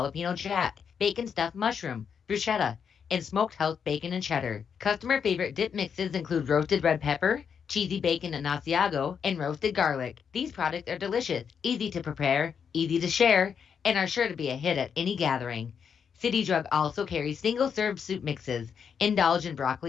jack, bacon stuffed mushroom, bruschetta, and smoked house bacon and cheddar. Customer favorite dip mixes include roasted red pepper, cheesy bacon and Asiago, and roasted garlic. These products are delicious, easy to prepare, easy to share, and are sure to be a hit at any gathering. City Drug also carries single-serve soup mixes. Indulge in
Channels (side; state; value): right; quieter; 7.0 dB